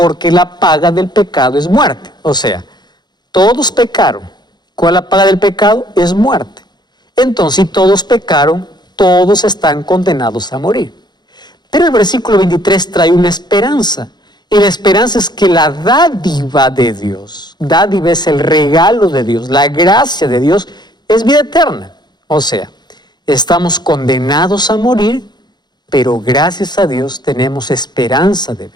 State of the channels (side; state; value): right; late; 0.21 ms